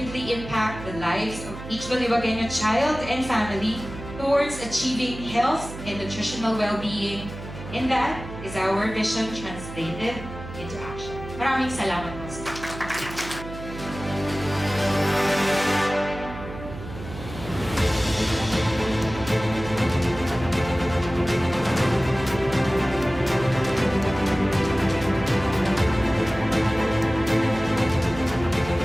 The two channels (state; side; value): noise; right; hum, 12 dB below the sound